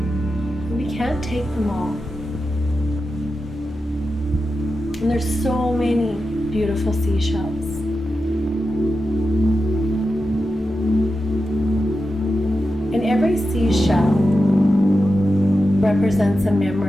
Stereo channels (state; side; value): normal; both; correlation 0.90